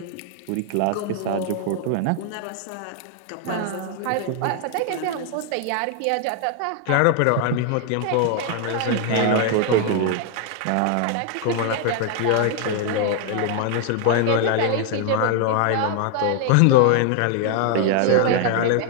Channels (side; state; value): both; different; correlation 0.00